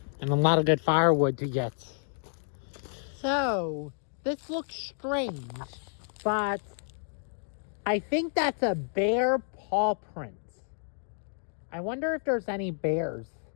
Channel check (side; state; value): right; silent; digital silence